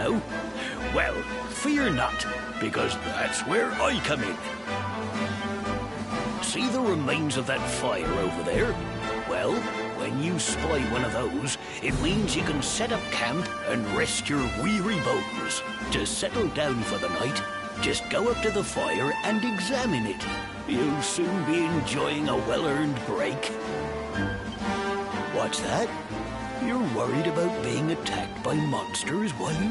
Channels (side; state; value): both; identical; correlation 1.00